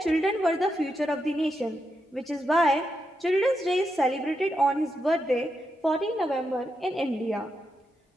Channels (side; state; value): both; normal; correlation 0.84